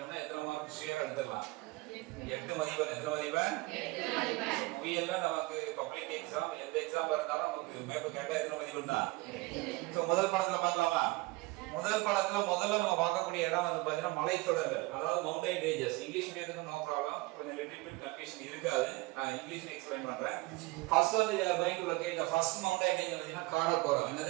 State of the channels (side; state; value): left; quieter; 22.4 dB